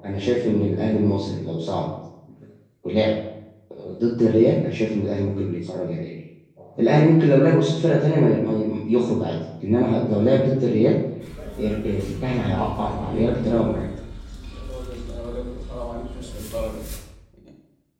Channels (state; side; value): identical; both; correlation 1.00